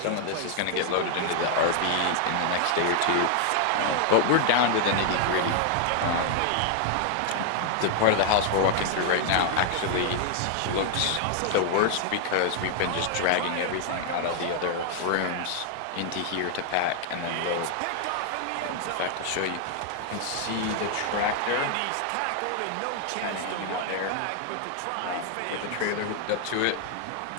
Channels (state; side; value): different; both; correlation 0.00